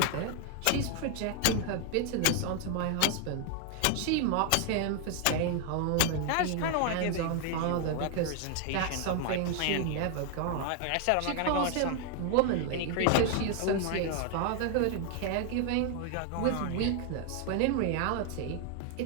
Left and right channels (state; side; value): different; both; correlation 0.00